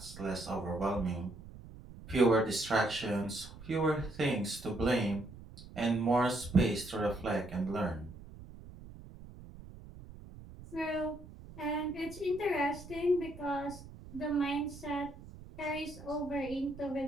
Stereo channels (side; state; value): right; noise; rumble, 16 dB below the sound